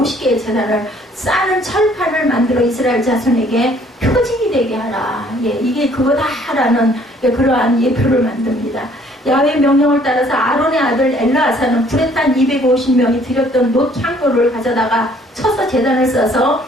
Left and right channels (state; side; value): normal; both; correlation 0.60